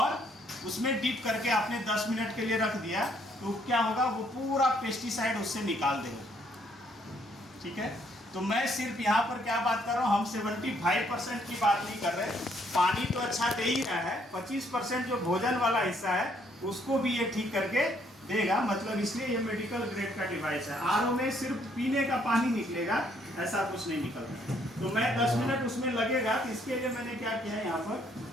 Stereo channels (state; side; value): normal; both; correlation 0.68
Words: उसमें डीप करके आपने 10 मिनट के लिए रख दिया, तो क्या होगा, वो पूरा पेस्टिसाइड उससे निकाल देगा। ठीक है, तो मैं सिर्फ यहाँ पर क्या बात कर रहा हूँ, हम 75% की बात नहीं कर रहे। पानी तो अच्छा दे ही रहा है, 25% जो भोजन वाला हिस्सा है उसको भी ये ठीक करके देगा। मतलब इसलिए ये मेडिकल ग्रेड का डिवाइस है। आरओ में सिर्फ पीने का पानी निकलेगा, ऐसा कुछ नहीं निकलता। तो मैं 10 मिनट उसमें लगेगा, तो इसके लिए मैंने क्या किया है, यहाँ पर